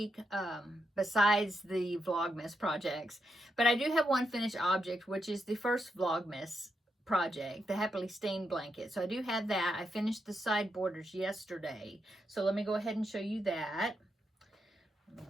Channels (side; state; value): both; normal; correlation 0.82